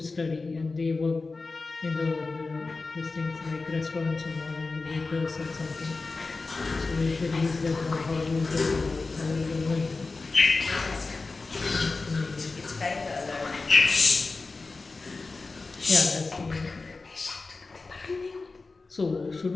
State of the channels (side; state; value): right; quieter; 3.8 dB